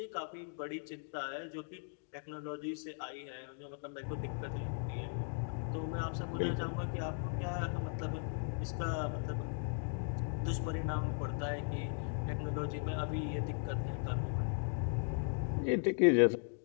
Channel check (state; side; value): silent; right; 53 dB below the other